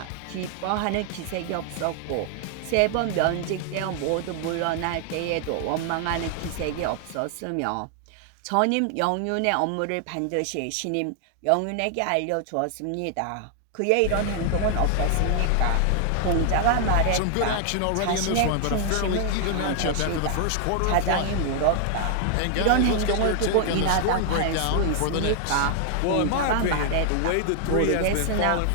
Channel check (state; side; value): different; both; correlation 0.00